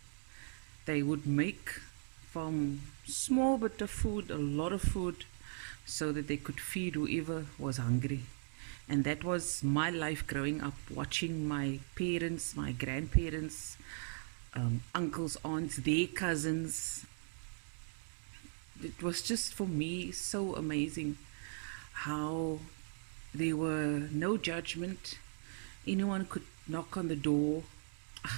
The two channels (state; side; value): silent; left; digital silence